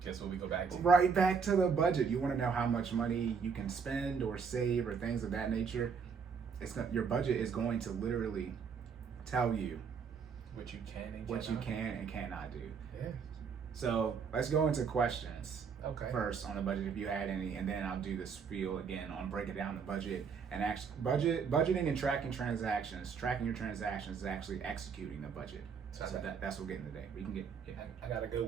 guess what we go back to? Right back to the budget. You want to know how much money you can spend or save or things of that nature. Your budget is going to literally tell you what you can and cannot do. Yeah. So let's go into questions. Okay. First on the budget, if you had any, and then I'll do the spiel again on breaking down the budget and budgeting and tracking transactions. Tracking your transactions is actually executing the budget. So that's what we're getting today. We can get. Yeah. I got a good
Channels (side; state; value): left; quieter; 6.1 dB